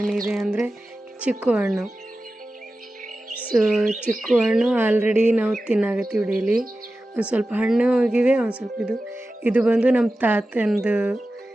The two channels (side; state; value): both; normal; correlation 0.94